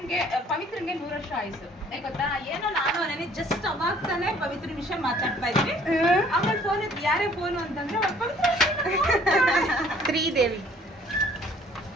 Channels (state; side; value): normal; both; correlation 0.57